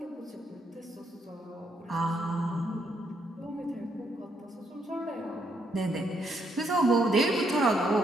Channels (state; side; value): normal; both; correlation 0.74